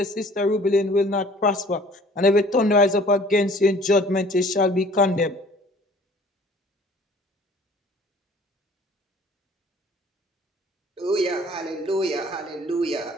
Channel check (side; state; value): both; normal; correlation 0.52